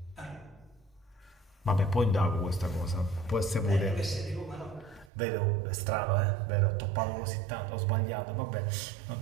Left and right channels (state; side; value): drops out; left; at 5.1 s